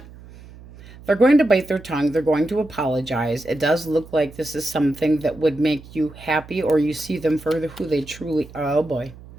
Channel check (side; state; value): right; noise; hum, 19 dB below the sound